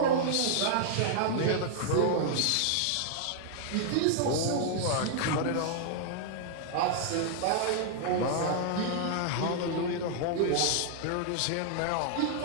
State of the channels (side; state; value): both; different; correlation -0.01